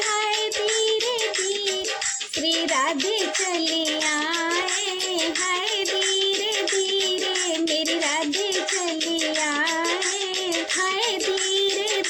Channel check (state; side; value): identical; both; correlation 1.00